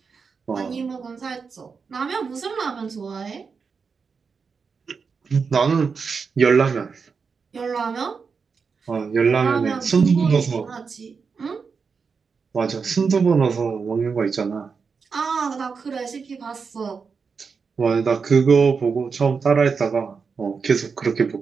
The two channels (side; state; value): left; quieter; 5.4 dB